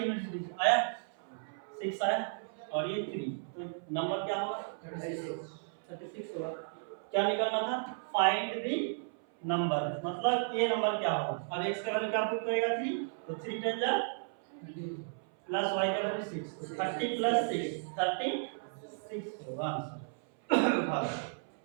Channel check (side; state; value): left; silent; 55 dB below the other